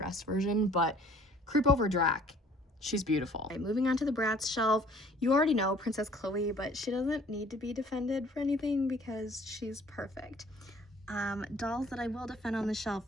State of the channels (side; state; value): both; normal; correlation 0.56